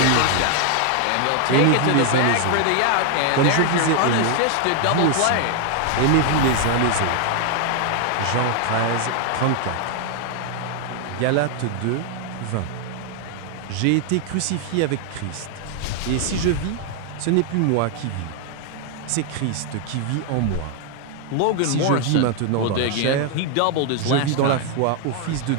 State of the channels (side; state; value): both; different; correlation 0.00